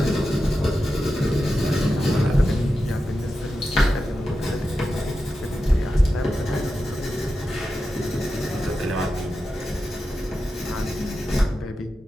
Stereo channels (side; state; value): both; normal; correlation 0.91